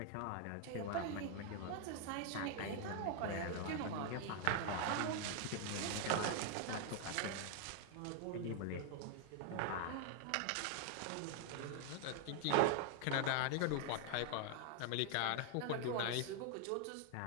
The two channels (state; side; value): different; both; correlation 0.00